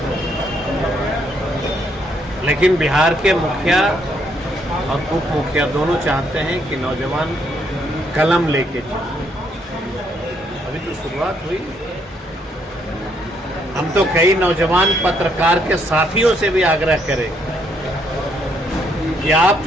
लेकिन बिहार के मुखिया और उप मुखिया दोनों चाहते हैं कि नौजवान कलम लेके चले। अभी तो शुरुआत हुई। हम तो कई नौजवान पत्रकार के साथियों से भी आग्रह करें कि आप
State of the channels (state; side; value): normal; both; correlation 0.72